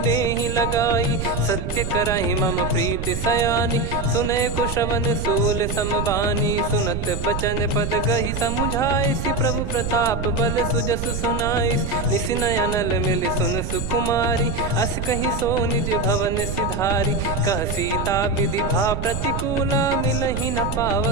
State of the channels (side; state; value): right; noise; rumble, 4 dB below the sound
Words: लगाई। सत्य करहि मम प्रीति सयानी, सुनय को श्रवण सूल समबानी। सुनत बचन पद गहि समुझाए, सि प्रभु प्रताप बल सुजस सुनाइस। निसि नयनल मिल सुन सुकुमारी, अस कहि सो निज भवन सिधारी। कह सीता विधि भा प्रतिकूला, मिलहि न